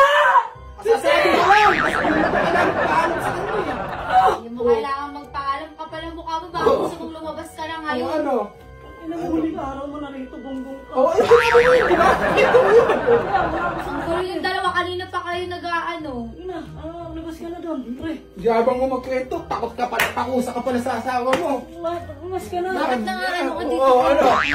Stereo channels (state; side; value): identical; both; correlation 1.00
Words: Sasabi mo lang, kasi hindi mo kailangan paalam sa kanya eh. Hindi mo kailangan magpaalam ka pala mukha mo. Baka gusto mong lumabas ka na Ang ngayon. ano? Inamuling araw mo na rito, gunggong ka. Oh, ito mo yun, di ba? Ito mo yun. Ang gulo yung dalawa. Kanina pa kayo nag-aano. Ina, labas ka na doon, pre. Yabang mo magkwento, takot ka pala, takusa ka pala sa asawa mo. Labas ka na. Bakit na nga ano ka dito? Oo, ano?